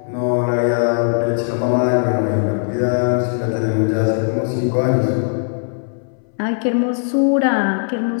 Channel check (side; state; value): right; silent; 67 dB below the other